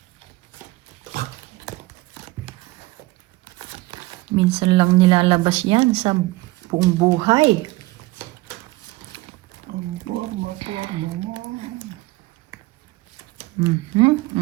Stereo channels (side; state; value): left; quieter; 20.2 dB